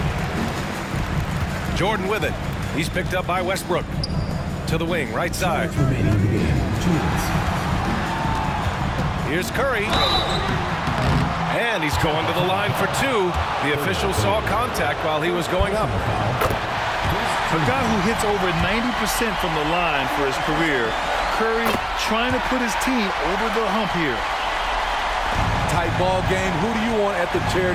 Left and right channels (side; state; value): both; identical; correlation 1.00